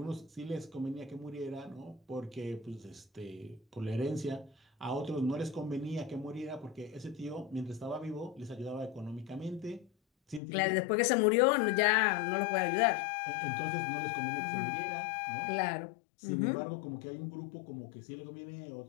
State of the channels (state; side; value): drops out; right; at 10.4 s